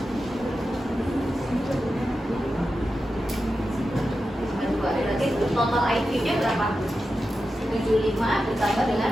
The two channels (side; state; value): both; normal; correlation 0.91